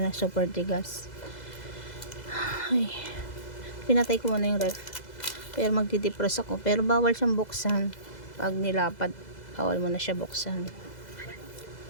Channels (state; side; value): late; right; 2.0 ms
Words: na super tigas. Ay, Pinatay ko muna yung ref. Pero magdi-defrost ako. Pero bawal siyang buksan. Pag nilapat, bawal mo na siya buksan.